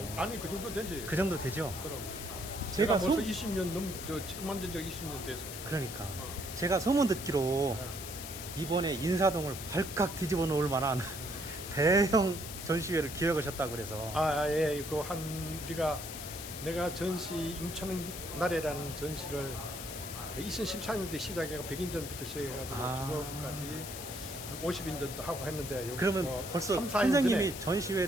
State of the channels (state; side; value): noise; left; hiss, 9 dB below the sound